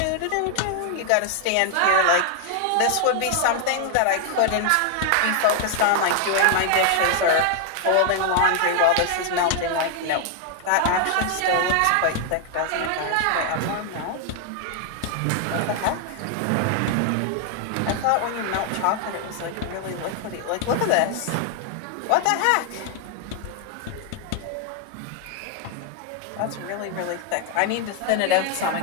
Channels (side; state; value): both; different; correlation 0.00